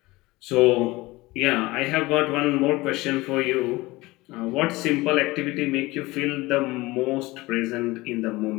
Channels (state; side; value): quieter; right; 20.8 dB